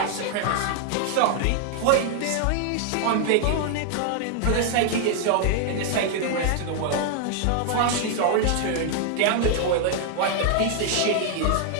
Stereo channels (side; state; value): both; different; correlation 0.00